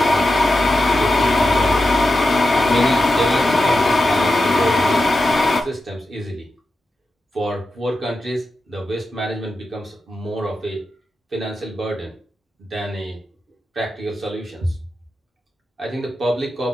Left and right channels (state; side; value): normal; both; correlation 0.90